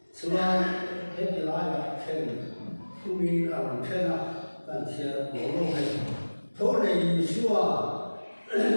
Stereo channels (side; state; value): both; inverted; correlation -1.00